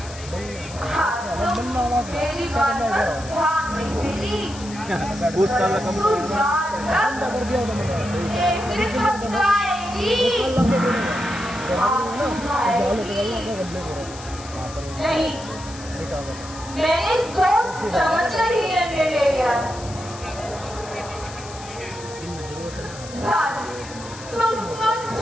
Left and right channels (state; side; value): noise; left; hiss, 15 dB below the sound